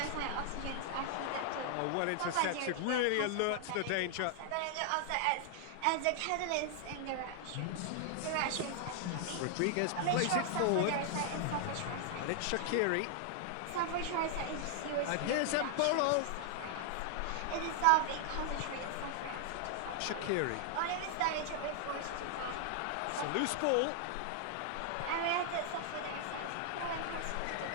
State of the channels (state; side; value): different; both; correlation 0.00